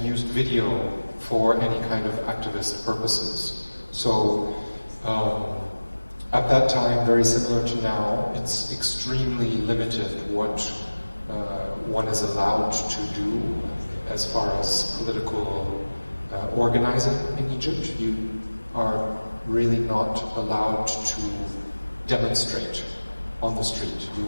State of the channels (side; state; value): both; inverted; correlation -1.00